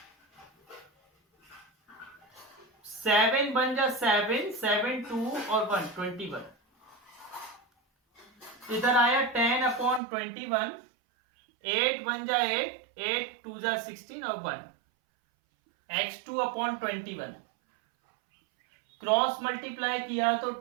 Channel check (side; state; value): left; drops out; at 10.0 s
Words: 7 बन जा 7, 7 2 और 1 21। इधर आया 10 अपॉन 21, 8 बन जा 8, 8 2 जा 16 और 1 x2 अपॉन 21। क्रॉस मल्टीप्लाई किया तो